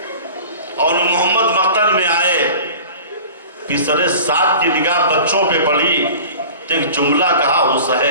اون محمد مقتل میں آئے، پسرے ساتھ کی نگاہ بچوں پہ پڑی، ایک جملہ کہا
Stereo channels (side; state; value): both; inverted; correlation -0.40